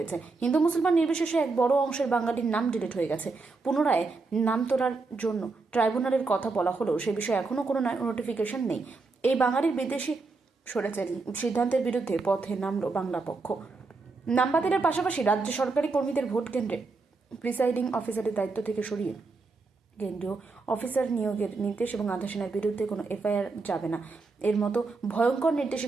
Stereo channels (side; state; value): left; quieter; 3.9 dB